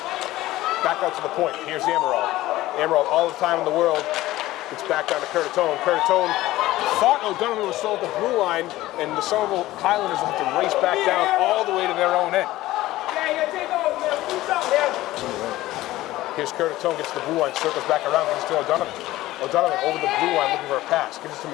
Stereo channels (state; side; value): quieter; right; 16.5 dB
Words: Back out to the point. Here's Amaral. Amaral, all the time in the world. It's back down to Curtatone. Curtatone thought O'Donovan was still at the blue line, and the Somerville Highlanders will have to race back down all the way to their own end. Here's Curtatone, gets to the blue line, circles back around, gives it to O'Donovan. O'Donovan over the blue line looking for a pass. Gives it to